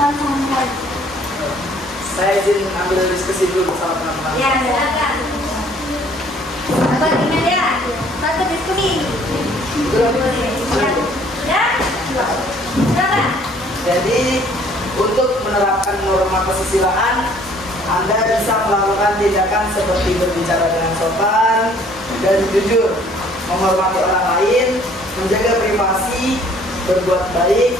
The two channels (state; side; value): normal; both; correlation 0.58